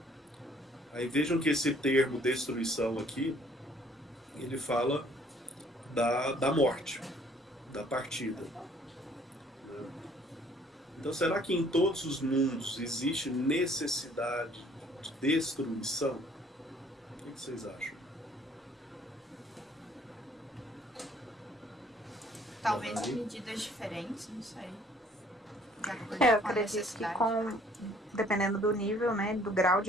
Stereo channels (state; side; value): normal; both; correlation 0.59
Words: Aí vejam que esse termo destruição aqui, ele fala da morte, da partida. Então, será que em todos os mundos existe necessidade de destruição? O que vocês acham? Talvez em medidas diferentes, não sei. Eu acredito que dependendo do nível, né, do grau